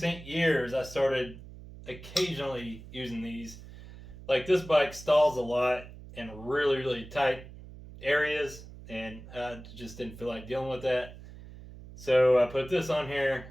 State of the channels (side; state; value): right; noise; hum, 16 dB below the sound